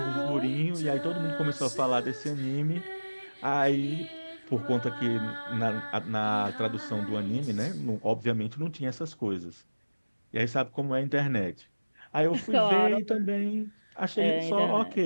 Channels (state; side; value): inverted; both; correlation -1.00